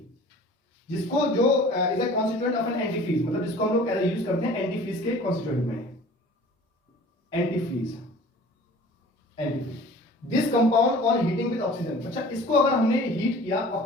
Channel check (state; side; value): normal; both; correlation 0.46